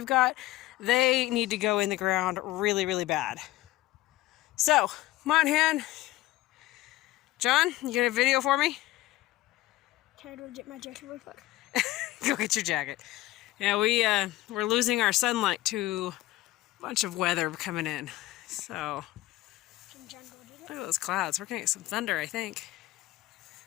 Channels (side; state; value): right; quieter; 17.2 dB